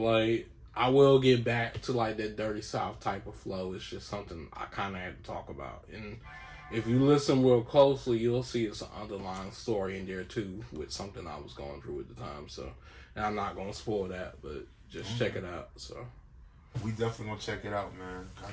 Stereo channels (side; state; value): both; identical; correlation 1.00